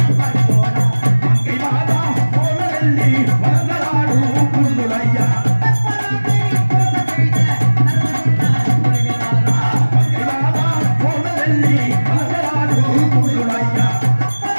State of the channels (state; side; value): inverted; both; correlation -1.00